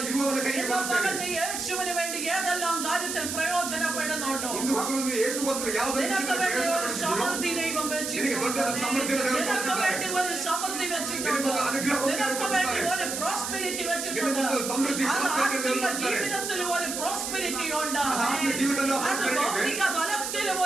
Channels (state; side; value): noise; right; hiss, 4 dB below the sound